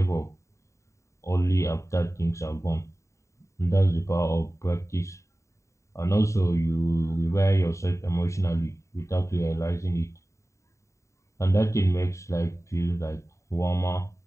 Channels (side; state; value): right; late; 0.14 ms